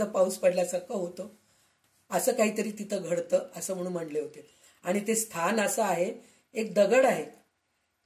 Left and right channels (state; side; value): identical; both; correlation 1.00